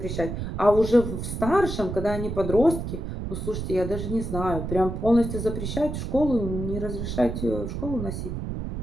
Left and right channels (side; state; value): right; noise; rumble, 5 dB below the sound